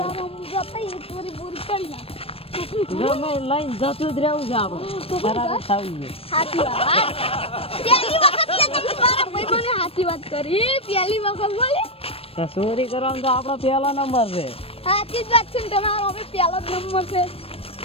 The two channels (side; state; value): right; late; 0.28 ms